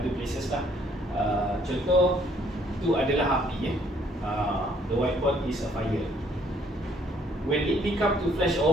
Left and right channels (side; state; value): both; normal; correlation 0.64